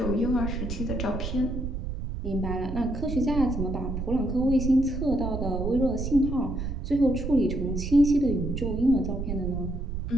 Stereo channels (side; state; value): right; noise; rumble, 4 dB below the sound